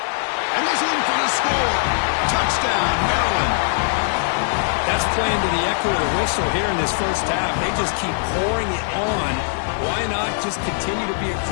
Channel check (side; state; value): right; silent; digital silence